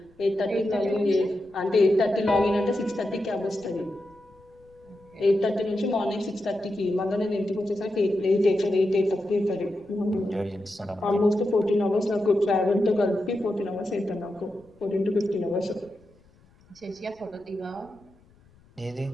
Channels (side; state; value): left; noise; rumble, 30 dB below the sound